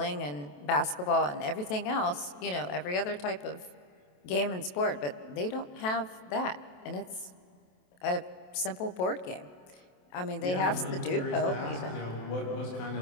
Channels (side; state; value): right; late; 28 ms